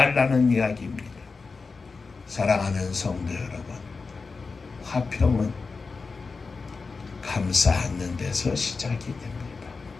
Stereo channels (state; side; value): quieter; right; 4.4 dB